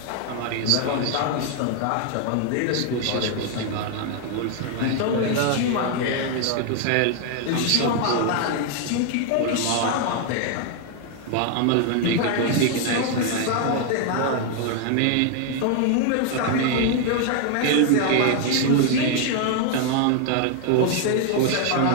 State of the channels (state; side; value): different; both; correlation 0.00